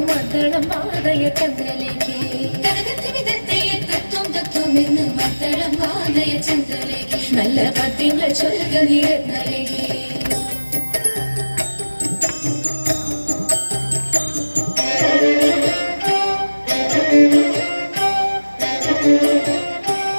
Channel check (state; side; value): inverted; both; correlation -1.00